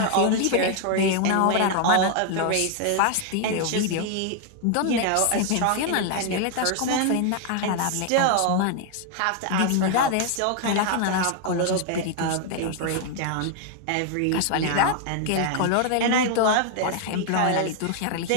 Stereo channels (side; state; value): both; different; correlation 0.00